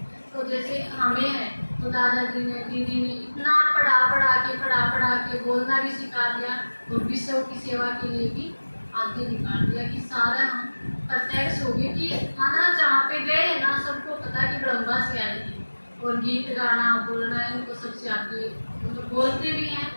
तो जैसे हमें है तो दादाजी ने, दीदी ने इतना पढ़ा के बोलना भी सिखा दिया और विश्व की सेवा के लिए भी आगे निकाल दिया कि सारा हम प्रत्यक्ष हो गए कि खाना जहाँ पे गए ना सबको पता कि ब्रह्मा से आई है। और गीत गाना बोलना इनको सबसे आगे, मतलब बोलते भी हैं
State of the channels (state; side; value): inverted; both; correlation -1.00